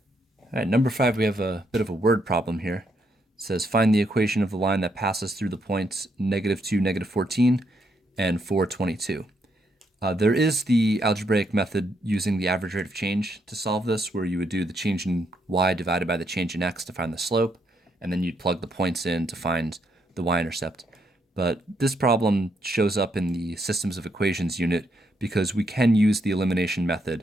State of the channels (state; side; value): normal; both; correlation 0.76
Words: All right, number 5, we have a bit of a word problem here. It says find the equation of the line that passes through the points -2, -14, and 4, 22. There is the algebraic method using the average rate of change to solve this, where you would do the change in y divided by the change in x to find the slope, and then you'd plug the points in to find the y-intercept. But this problem shows up in the systems of equations unit because we can use the elimination